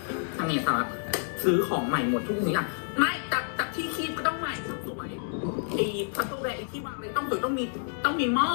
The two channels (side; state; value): right; silent; digital silence